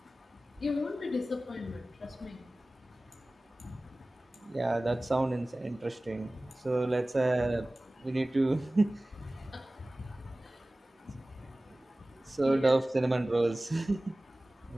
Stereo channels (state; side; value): normal; both; correlation 0.98